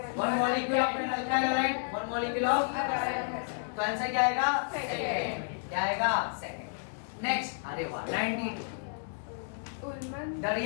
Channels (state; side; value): silent; right; digital silence